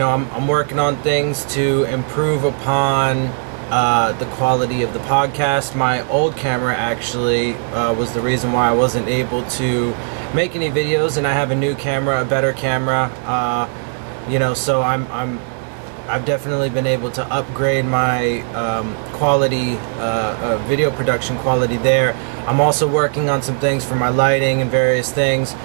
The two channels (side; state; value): left; silent; digital silence